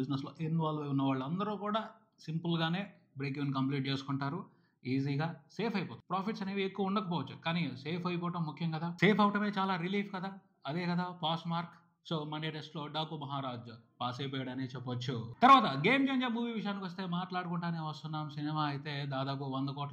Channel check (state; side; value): identical; both; correlation 1.00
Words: బిజినెస్ లో ఇన్వాల్వ్ అయి ఉన్న వాళ్ళందరూ కూడా సింపుల్ గానే బ్రేక్ ఈవెన్ కంప్లీట్ చేసుకుంటారు. ఈజీగా సేఫ్ అయిపోతుంది. ప్రాఫిట్స్ అనేవి ఎక్కువ ఉండకపోవచ్చు, కానీ సేఫ్ అయిపోవటం ముఖ్యం కదా. సేఫ్ అవటమే చాలా రిలీఫ్ కదా. అదే కదా pass mark. So Monday test లో డాకు మహారాజ్ పాస్ అయిపోయాడని చెప్పొచ్చు. తర్వాత గేమ్ చేంజర్ మూవీ విషయానికి వస్తే మాట్లాడుకుంటానే వస్తున్నాం. సినిమా అయితే దాదాపు 100